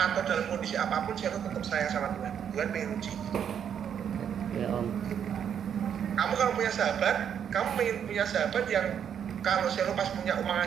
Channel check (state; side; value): quieter; left; 8.5 dB